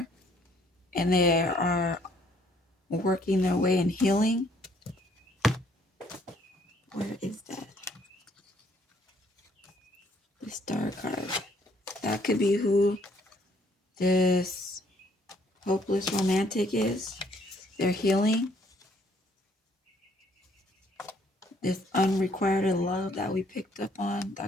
And they are working their way in healing. Where is that? The star card. That could be who this hopeless romantic is. They're healing. This unrequited love that we picked up on.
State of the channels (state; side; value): normal; both; correlation 0.64